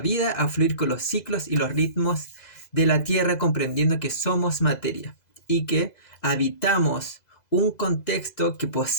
a fluir con los ciclos y los ritmos de la tierra, comprendiendo que somos materia y que habitamos un contexto que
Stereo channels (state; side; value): late; right; 2.0 ms